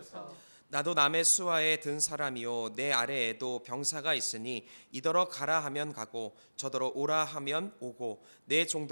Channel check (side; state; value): both; inverted; correlation -1.00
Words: 나도 남의 수하에 든 사람이요 내 아래에도 병사가 있으니 이더러 가라 하면 가고 저더러 오라 하면 오고 내